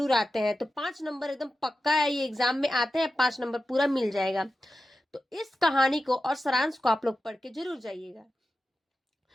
आते हैं। तो 5 नंबर एकदम पक्का है, ये एग्जाम में आते हैं, 5 नंबर पूरा मिल जाएगा। तो इस कहानी को और सारांश को आप लोग पढ़ के जरूर जाइएगा।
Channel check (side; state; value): both; normal; correlation 0.92